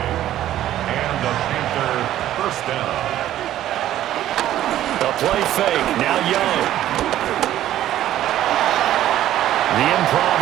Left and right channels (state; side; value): quieter; left; 12.8 dB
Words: And the Panther 1st down. The play fake. Now Young. The improv